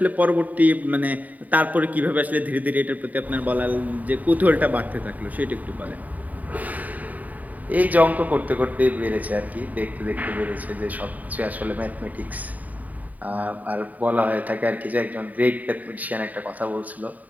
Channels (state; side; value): late; left; 0.075 ms